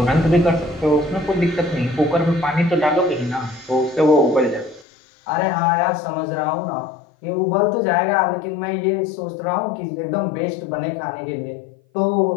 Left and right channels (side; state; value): right; drops out; at 4.9 s